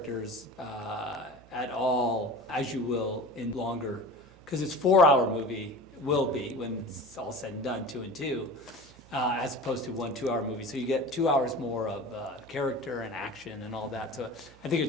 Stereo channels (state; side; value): noise; right; hum, 25 dB below the sound